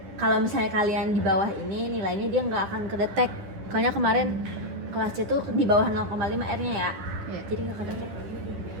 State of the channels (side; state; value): left; late; 10 ms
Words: Kalau misalnya kalian di bawah ini nilainya dia nggak akan kedetek. Soalnya kemarin kelas C tuh di bawah 0,5 R-nya ya. Jadi nggak kedetek.